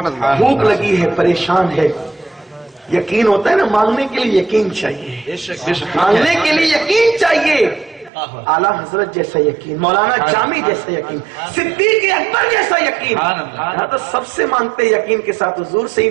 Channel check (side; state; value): left; drops out; at 8.1 s